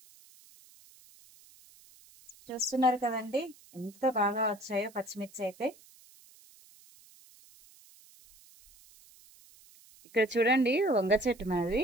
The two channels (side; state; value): right; noise; hiss, 26 dB below the sound